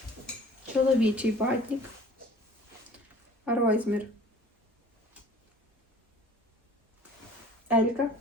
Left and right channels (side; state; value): both; normal; correlation 0.48